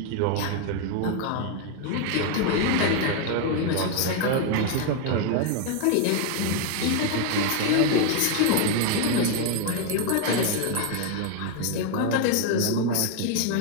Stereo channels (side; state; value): both; different; correlation 0.01